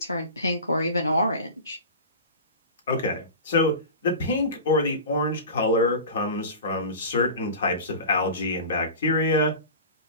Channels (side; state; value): both; inverted; correlation -0.33